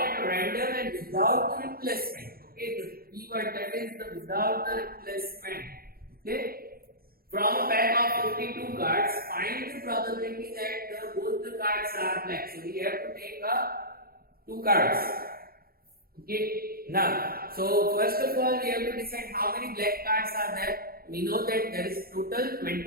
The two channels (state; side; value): late; left; 0.44 ms